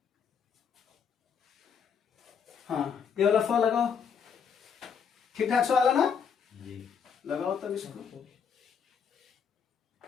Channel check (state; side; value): quieter; right; 6.9 dB